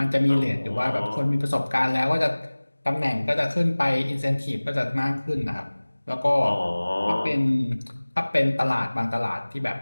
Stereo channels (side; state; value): both; inverted; correlation -1.00